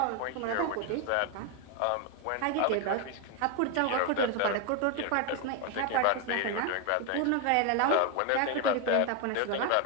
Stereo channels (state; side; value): different; both; correlation 0.01